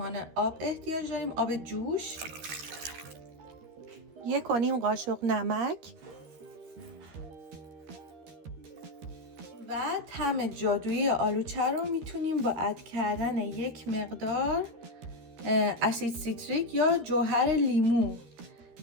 آب احتیاج داریم، آب جوش، 1.5 قاشق نمک و طعم جادویی آلوچه رو میتونیم با اد کردن 1 مقدار اسید سیتریک یا جوهر لیمو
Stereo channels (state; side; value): late; left; 13 ms